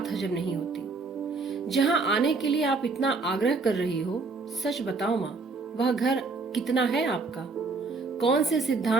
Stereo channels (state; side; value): quieter; left; 4.0 dB